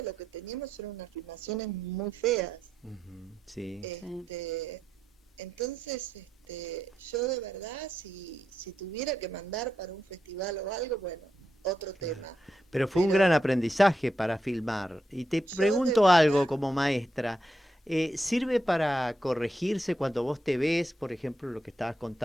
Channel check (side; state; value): both; normal; correlation 0.84